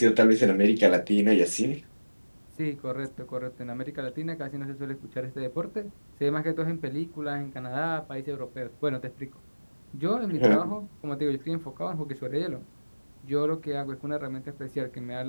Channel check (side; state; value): both; inverted; correlation -1.00